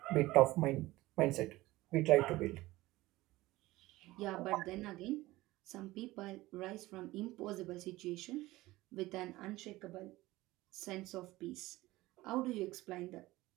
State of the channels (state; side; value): quieter; left; 18.5 dB